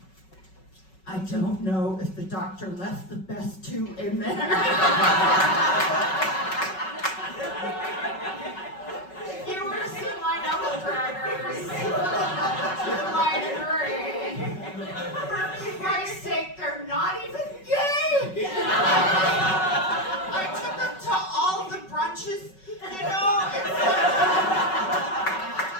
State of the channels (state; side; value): late; right; 5.3 ms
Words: I don't know if the doctor left the best two in there. If you were to see my knuckle draggers, you might agree. For Christ's sake, they're not even gay! I took them to all the brunches,